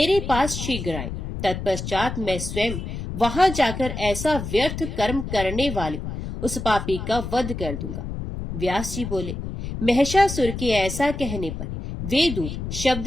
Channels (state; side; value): noise; left; rumble, 6 dB below the sound